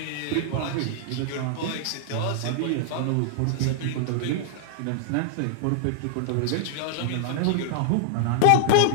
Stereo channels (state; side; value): different; both; correlation -0.01